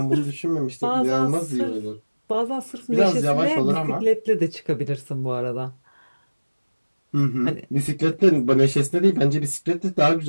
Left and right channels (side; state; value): both; inverted; correlation -1.00